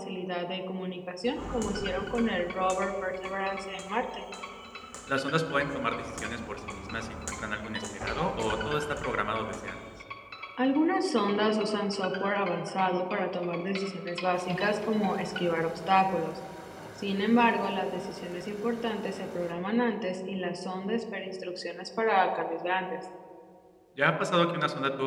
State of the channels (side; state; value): both; identical; correlation 1.00